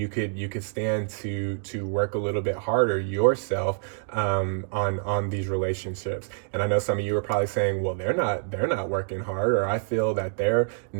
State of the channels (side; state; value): left; silent; digital silence